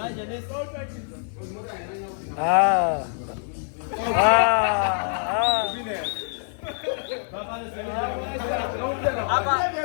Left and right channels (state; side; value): silent; right; 59 dB below the other